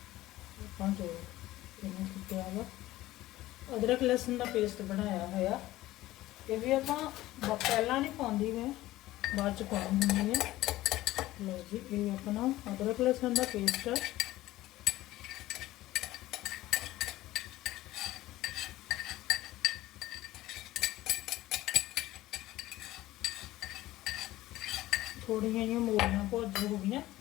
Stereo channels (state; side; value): quieter; right; 16.4 dB